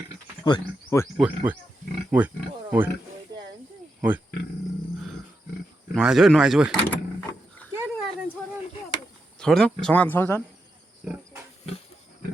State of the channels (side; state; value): both; normal; correlation 0.86